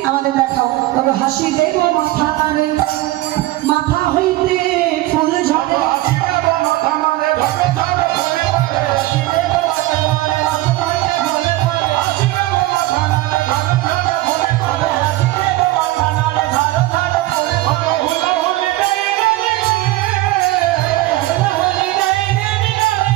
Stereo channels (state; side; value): quieter; left; 17.5 dB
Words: আমাদের দেখাও। তবে হাসি দেব মাথা নাড়ে, মাথা হইতে ফুল ঝরে,